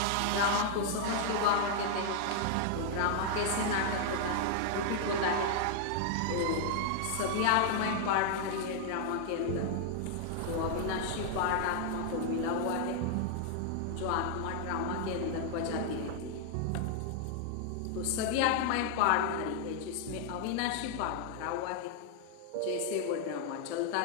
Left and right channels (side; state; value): both; different; correlation 0.00